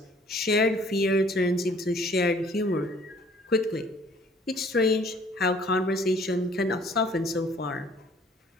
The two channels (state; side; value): normal; both; correlation 0.56